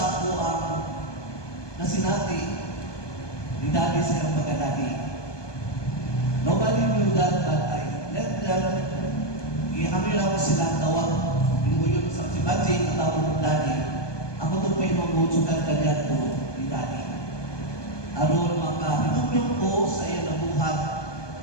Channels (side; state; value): right; late; 1.2 ms